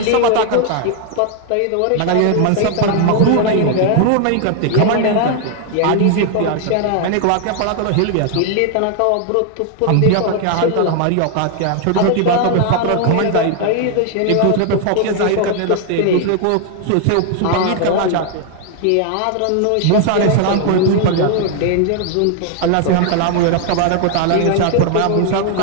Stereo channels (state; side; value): different; both; correlation 0.00